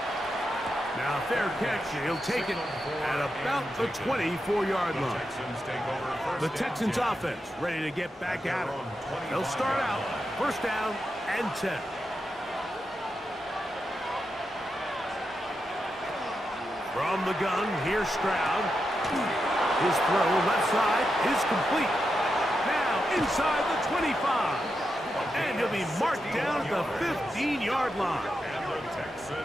Now fair catch, and he'll take it at about the 24-yard line. The Texans offense ready to get back at it. They'll start out 1st down and 10. From the gun, here's Stroud. His throw left side is complete. Now inside the 25. And he'll be marked down at the 15-yard line.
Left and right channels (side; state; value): both; normal; correlation 0.87